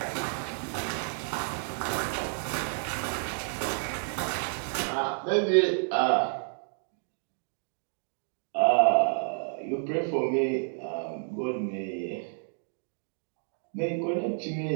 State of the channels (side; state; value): left; silent; 58 dB below the other